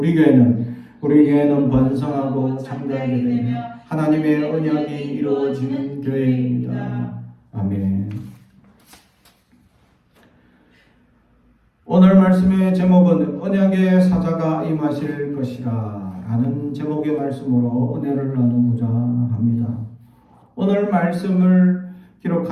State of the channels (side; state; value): both; identical; correlation 1.00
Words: 교회는 번성하고 창대하게 되며 하나님의 언약이 이루어지는 교회입니다. 아멘. 오늘 말씀의 제목은 언약의 사자가 임하실 것이라 라는 제목의 말씀으로 은혜를 나누고자 합니다. 오늘 말씀을